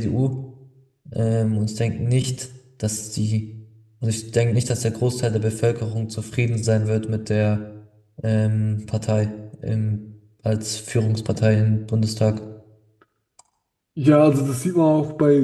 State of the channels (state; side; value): identical; both; correlation 1.00